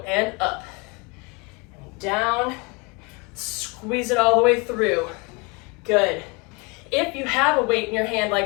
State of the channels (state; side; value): quieter; right; 29.3 dB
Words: and up, and down, squeeze it all the way through. Good. If you have a weight in your hand